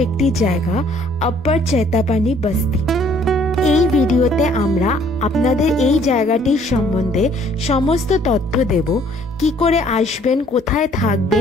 একটি জায়গা, আপ্পার চৈতাপানি বস্তি। এই ভিডিওতে আমরা আপনাদের এই জায়গাটির সম্বন্ধে সমস্ত তথ্য দেব। কি করে আসবেন, কোথায়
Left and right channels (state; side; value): normal; both; correlation 0.60